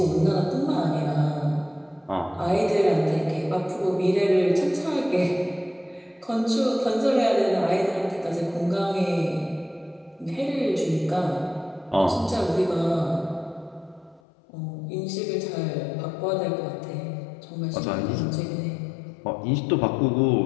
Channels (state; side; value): drops out; right; at 14.2 s